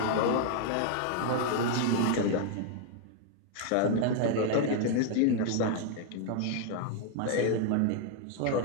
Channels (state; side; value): different; both; correlation 0.00